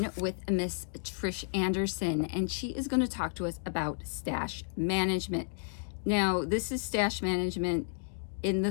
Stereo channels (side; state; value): right; silent; digital silence